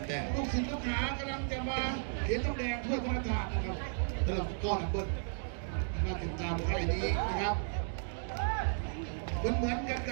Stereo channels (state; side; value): silent; left; digital silence